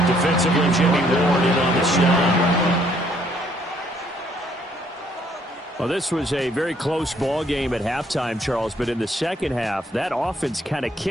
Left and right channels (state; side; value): normal; both; correlation 0.66